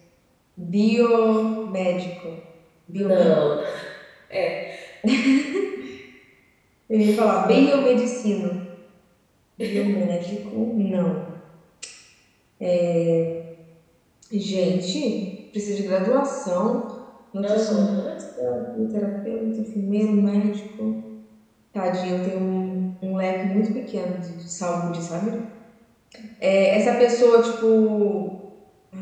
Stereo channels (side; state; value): both; identical; correlation 1.00